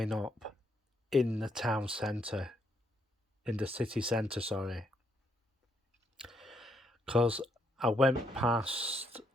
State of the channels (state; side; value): normal; both; correlation 0.75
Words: up in the town centre, in the city centre, sorry. Because I went past